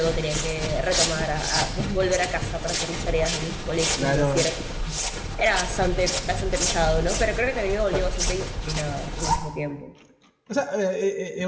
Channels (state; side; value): identical; both; correlation 1.00